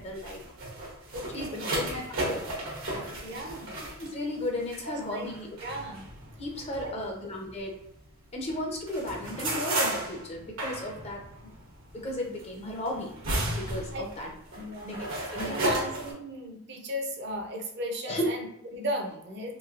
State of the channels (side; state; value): both; normal; correlation 0.14